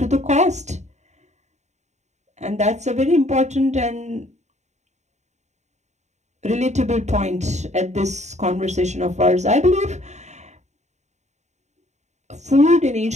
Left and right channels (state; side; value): late; left; 0.33 ms